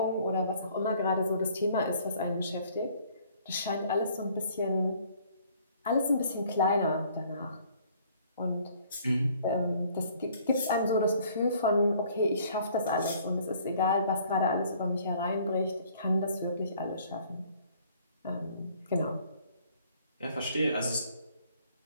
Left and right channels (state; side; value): inverted; both; correlation -0.59